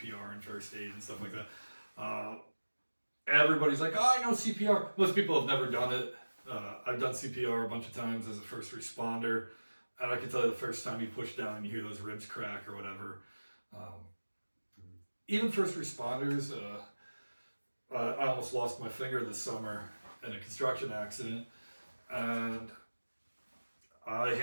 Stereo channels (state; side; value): inverted; both; correlation -1.00